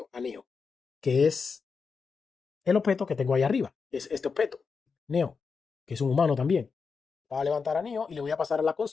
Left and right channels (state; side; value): quieter; right; 5.2 dB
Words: A Neo, que es el objeto que tengo ahí arriba. Es este objeto, Neo, que es un humano también. Va a levantar a Neo y le voy a pasar a la